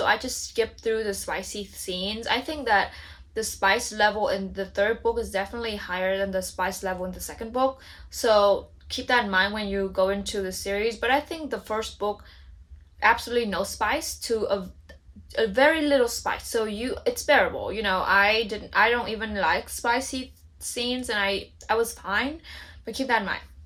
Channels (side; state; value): both; identical; correlation 1.00